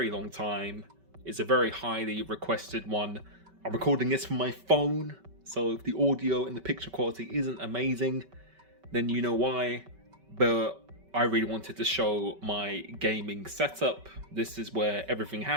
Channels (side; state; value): left; late; 5.2 ms